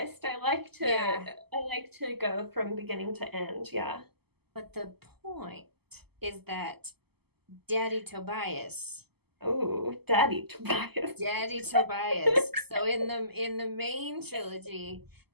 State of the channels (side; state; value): left; late; 0.97 ms